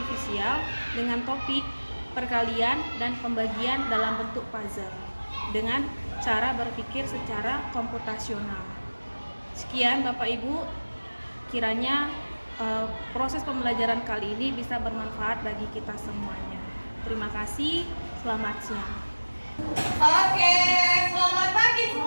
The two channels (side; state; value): both; inverted; correlation -1.00